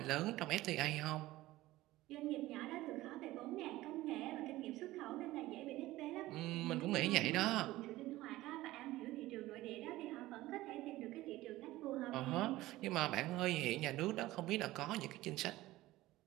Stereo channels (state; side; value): quieter; left; 17.2 dB